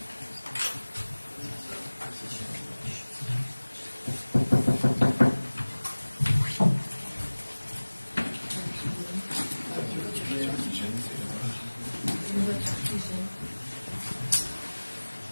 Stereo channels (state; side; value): inverted; both; correlation -1.00